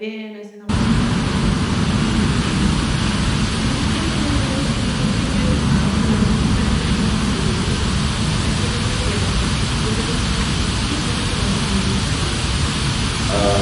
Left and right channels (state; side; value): identical; both; correlation 1.00